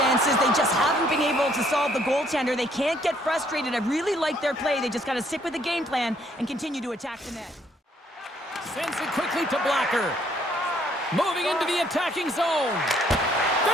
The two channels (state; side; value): normal; both; correlation 0.66